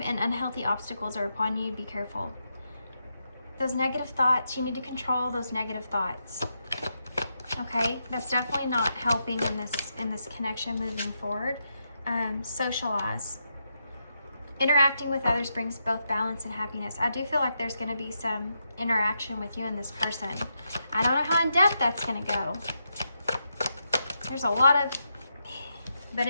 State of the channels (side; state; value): both; inverted; correlation -0.83